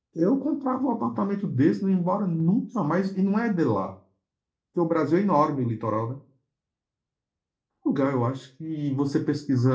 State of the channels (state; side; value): identical; both; correlation 1.00